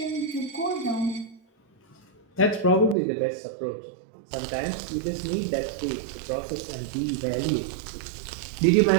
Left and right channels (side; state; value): left; drops out; at 3.0 s